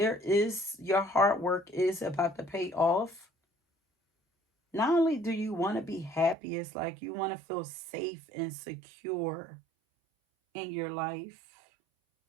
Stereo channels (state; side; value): drops out; left; at 6.4 s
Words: is, your hard work is about to pay off. Not only do you want to be happy, it's like you want to feel safe and secure in your life.